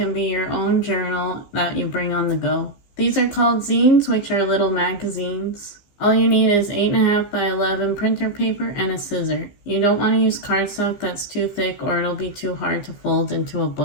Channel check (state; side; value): late; right; 15 ms